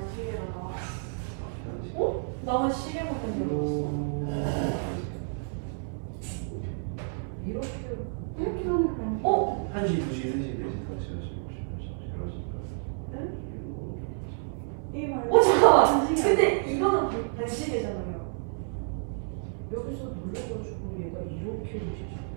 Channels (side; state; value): left; silent; 58 dB below the other